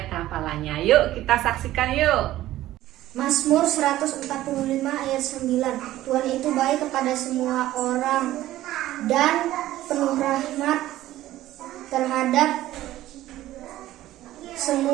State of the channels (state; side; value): quieter; left; 14.8 dB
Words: hafalannya. Yuk kita saksikan yuk. Mazmur 145 ayat 9. Tuhan itu baik kepada semua orang dan penuh rahmat terhadap